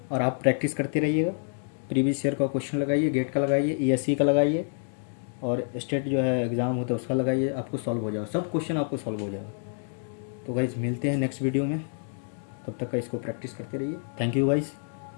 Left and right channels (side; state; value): right; silent; digital silence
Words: और आप प्रैक्टिस करते रहिएगा। प्रीवियस ईयर का क्वेश्चन लगाइए, गेट का लगाइए, ईएससी का लगाइए और स्टेट जो है एग्ज़ाम होता है उसका लगाइए, आपको सॉल्व हो जाएगा, सब क्वेश्चन आपको सॉल्व हो जाएगा। तो गाइस मिलते हैं नेक्स्ट वीडियो में, तब तक का इसको प्रैक्टिस करते रहिए। Thank you guys.